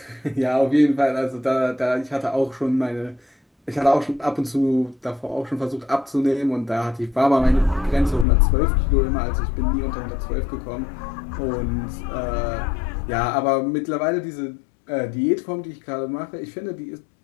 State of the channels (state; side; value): drops out; right; at 8.2 s